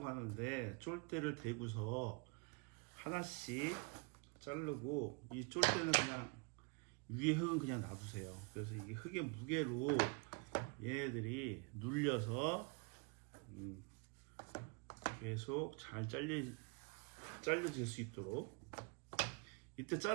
하는데, 쫄대를 대고서 하나씩 자르고, 이 쫄대는 그냥 위에 흙은 그냥 놔두세요. 그래서 이게 흙의 무게로 얘네들이 눌려서 계속 잘 잘려질 수 있도록. 이때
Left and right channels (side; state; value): left; quieter; 32.5 dB